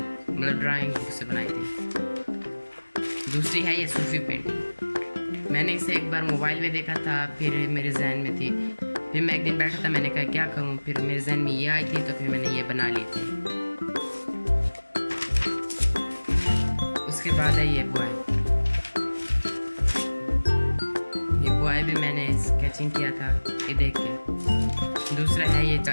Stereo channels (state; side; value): inverted; both; correlation -1.00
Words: ड्राइंग बुक से बनाई थी। दूसरी है ये सूफी पेंटिंग, मैंने इसे एक बार मोबाइल में देखा था, फिर मेरे जहन में थी। फिर मैं एक दिन बैठा था, मैंने कहा क्या करूं, फिर मेरे जहन में ये आई थी तो फिर मैंने ये बना ली थी। उसके बाद है ये बॉय, ये बॉय भी मैंने स्केचिंग किया था ये देख के। दूसरा है ये